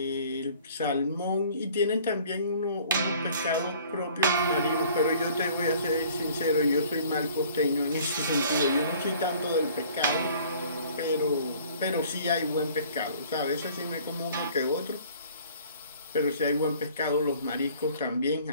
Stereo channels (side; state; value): both; inverted; correlation -0.53